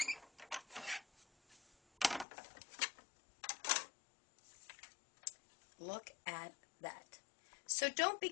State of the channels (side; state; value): right; drops out; at 2.2 s